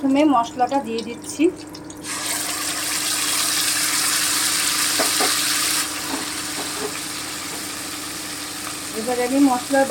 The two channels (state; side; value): identical; both; correlation 1.00